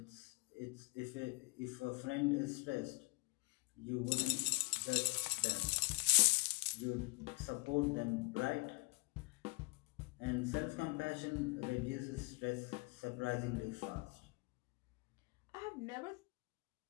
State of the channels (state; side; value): quieter; right; 29.6 dB